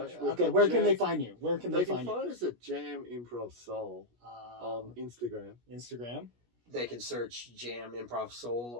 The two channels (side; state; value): left; late; 17 ms